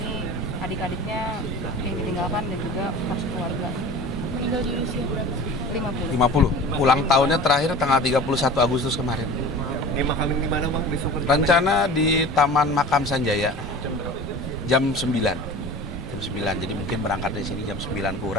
adik-adiknya yang ditinggalkan, dan juga kos keluarga. Meninggal di usia berapa? 50. Ulang tahunnya terakhir tanggal 31 Agustus kemarin. Dimakamin di mana Bang besok? Rencana di Taman Makam Sanjaya. Jam 9. Jadi mungkin berangkat dari sini jam 9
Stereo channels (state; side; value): normal; both; correlation 0.38